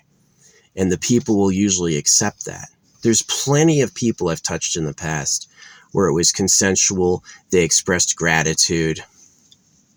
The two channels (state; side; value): identical; both; correlation 1.00